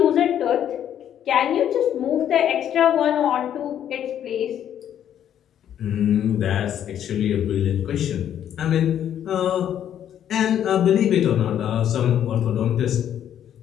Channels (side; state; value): right; quieter; 10.1 dB